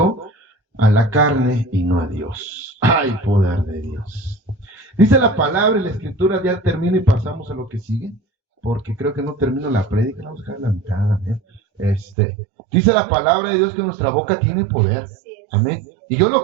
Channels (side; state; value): left; drops out; at 12.2 s